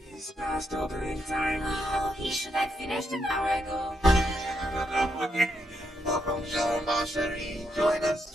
past opening time. Oh, he should have finished an hour ago. Welcome, Jean Marcherie. Join us.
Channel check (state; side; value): normal; both; correlation 0.80